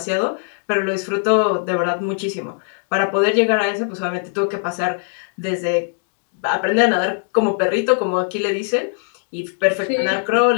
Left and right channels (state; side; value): silent; right; digital silence